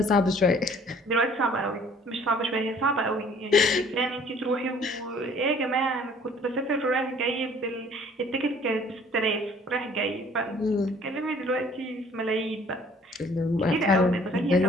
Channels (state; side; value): normal; both; correlation 0.55